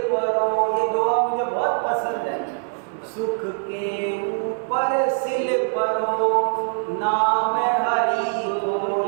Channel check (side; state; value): left; silent; digital silence